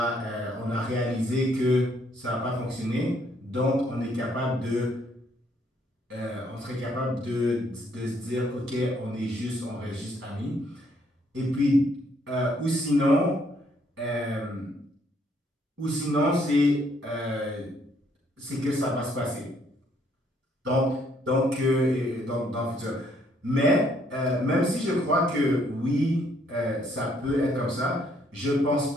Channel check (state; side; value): normal; both; correlation 0.68